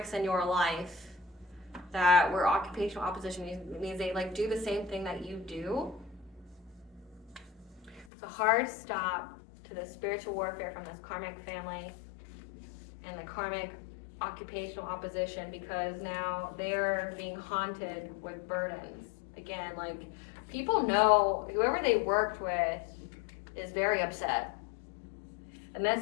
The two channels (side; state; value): right; drops out; at 8.1 s